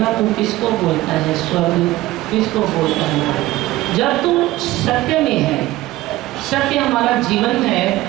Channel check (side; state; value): left; quieter; 17.2 dB